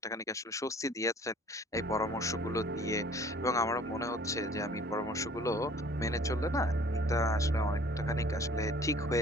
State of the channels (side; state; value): both; normal; correlation 0.52